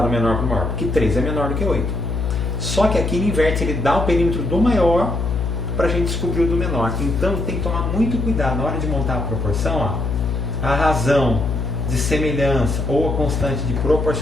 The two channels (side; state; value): left; noise; hum, 1 dB below the sound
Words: menor para o maior? Porque 3 é menor do que 8. Só que aqui ele inverte, ele dá o perímetro do maior para a gente descobrir o do menor. Então tem que tomar muito cuidado na hora de montar a proporção, ó. A razão de semelhança ou a constante de